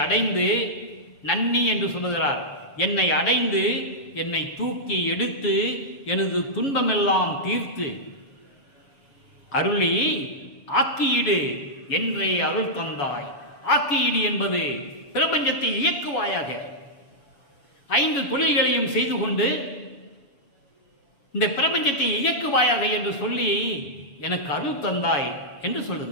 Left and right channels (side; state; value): right; late; 7.1 ms